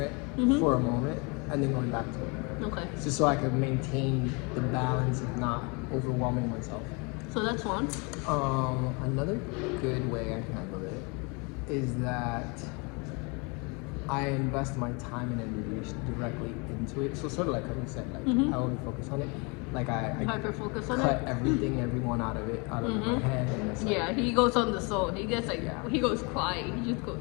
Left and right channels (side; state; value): right; quieter; 30.9 dB